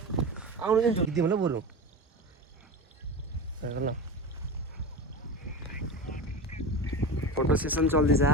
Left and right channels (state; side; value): normal; both; correlation 0.27